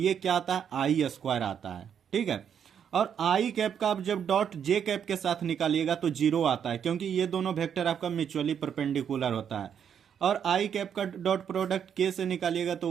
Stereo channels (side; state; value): left; quieter; 8.2 dB